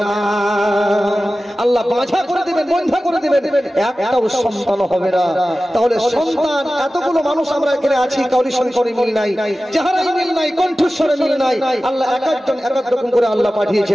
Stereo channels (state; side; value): normal; both; correlation 0.95